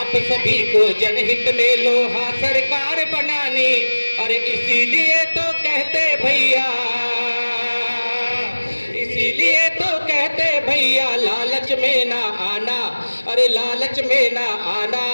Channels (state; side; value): inverted; both; correlation -1.00